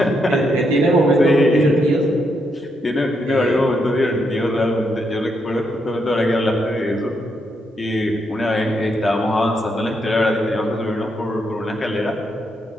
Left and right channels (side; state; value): both; normal; correlation 0.79